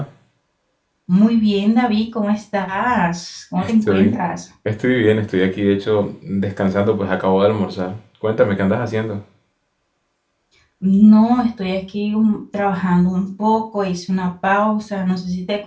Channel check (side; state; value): both; identical; correlation 1.00